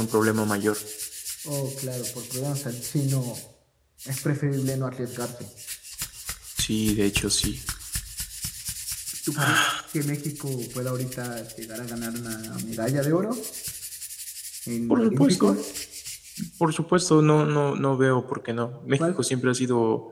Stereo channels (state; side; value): identical; both; correlation 1.00